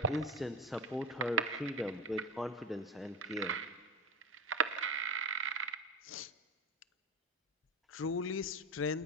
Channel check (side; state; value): both; normal; correlation 0.24